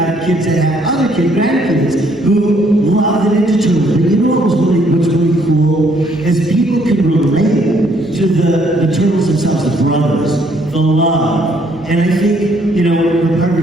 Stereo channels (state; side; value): normal; both; correlation 0.67